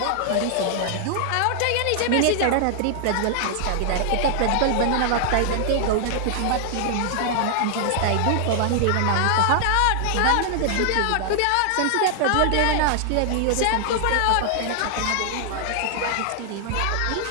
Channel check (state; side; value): different; both; correlation 0.00